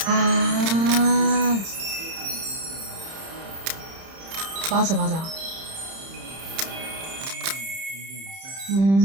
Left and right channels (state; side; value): late; left; 31 ms